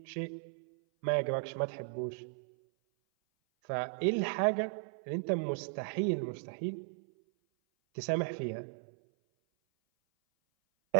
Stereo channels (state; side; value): silent; left; 54 dB below the other